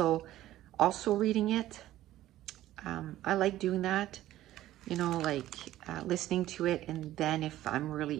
reading it. I like doing that, you know, like listening to it, and then if I'm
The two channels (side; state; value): left; quieter; 14.3 dB